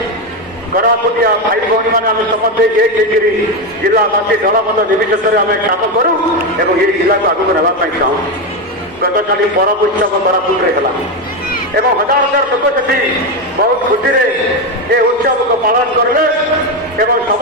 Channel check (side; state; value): both; normal; correlation 0.11